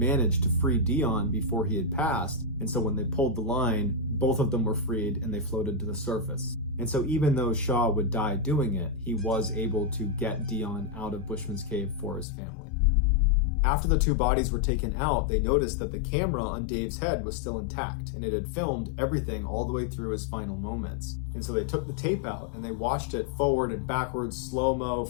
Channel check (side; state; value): right; drops out; at 12.2 s